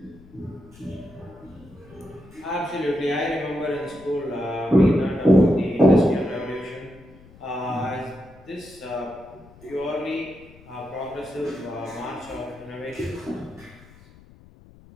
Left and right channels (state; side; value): noise; left; rumble, 23 dB below the sound